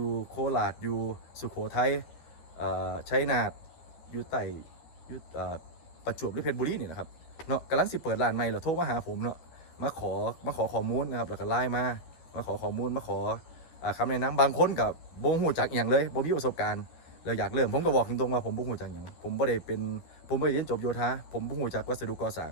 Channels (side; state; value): right; late; 12 ms